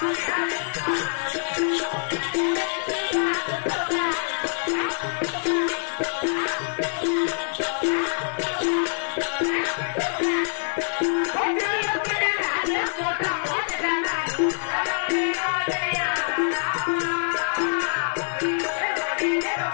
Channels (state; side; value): silent; right; 62 dB below the other